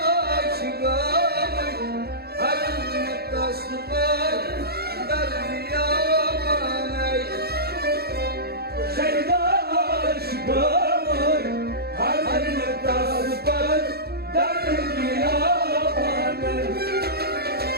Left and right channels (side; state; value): left; late; 0.46 ms